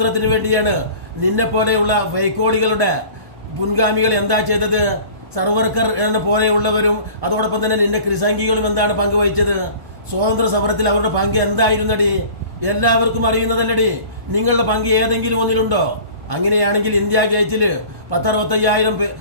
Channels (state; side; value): late; left; 1.1 ms